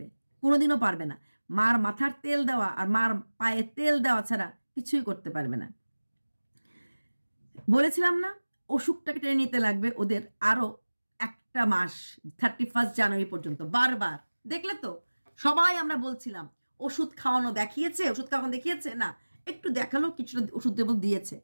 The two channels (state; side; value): inverted; both; correlation -1.00